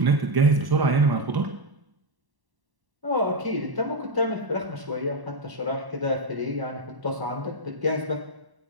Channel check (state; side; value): late; left; 1.1 ms